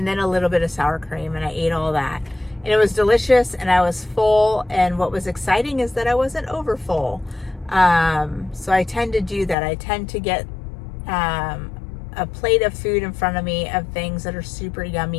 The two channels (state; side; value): drops out; right; at 9.6 s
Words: then a little bit of sour cream, and I ate all that. And it was delicious, and I was full, and what was exciting is that I wasn't over full. So I tend to do that. I tend to get a plate of food in front of me of things that are super